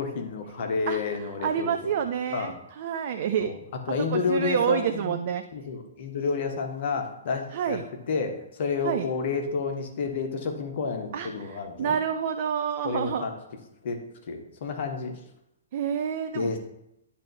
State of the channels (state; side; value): inverted; both; correlation -0.46